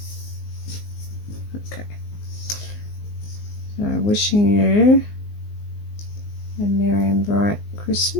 okay, so Wishing You a Merry and Bright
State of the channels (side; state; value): right; late; 19 ms